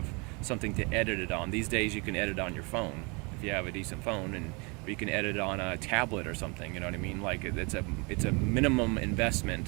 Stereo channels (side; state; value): left; quieter; 30.2 dB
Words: something to edit it on. These days you can edit on your phone if you have a decent phone, or you can edit it on a tablet or something, you know what I mean? Like it's a minimum investment,